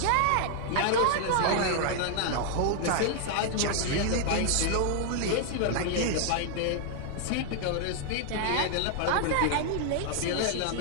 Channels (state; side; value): different; both; correlation 0.00